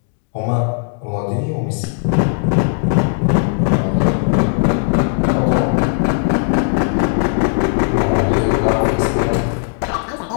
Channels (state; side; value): silent; right; digital silence